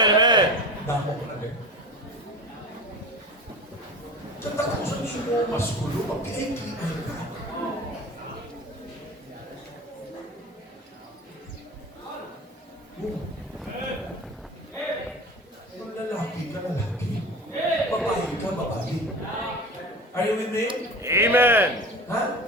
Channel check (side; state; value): both; normal; correlation 0.33